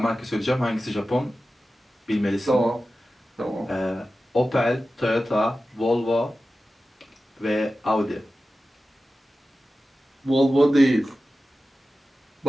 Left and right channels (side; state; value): both; normal; correlation 0.94